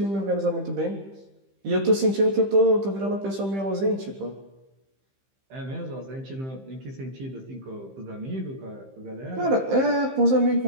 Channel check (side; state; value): left; late; 15 ms